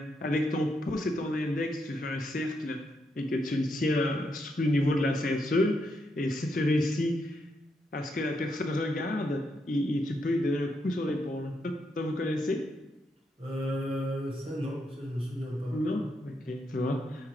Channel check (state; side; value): normal; both; correlation 0.80